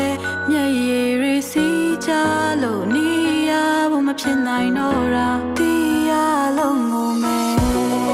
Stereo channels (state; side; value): identical; both; correlation 1.00